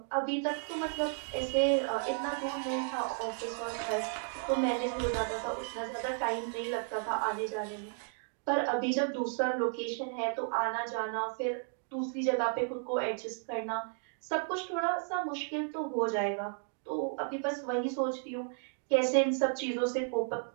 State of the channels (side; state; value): left; silent; 55 dB below the other